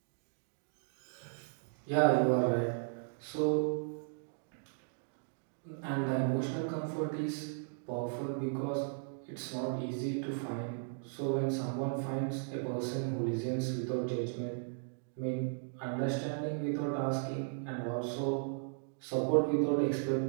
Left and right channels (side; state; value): left; silent; digital silence